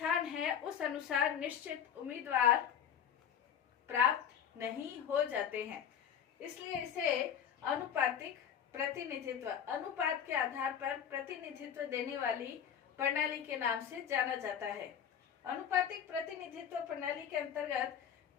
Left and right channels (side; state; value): right; quieter; 8.7 dB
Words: है उस अनुसार निश्चित उम्मीदवार प्राप्त नहीं हो जाते हैं। इसलिए इसे अनुपातिक प्रतिनिधित्व, अनुपात के आधार पर प्रतिनिधित्व देने वाली प्रणाली के नाम से जाना जाता है। अनुपातिक प्रतिनिधित्व प्रणाली के अंतर्गत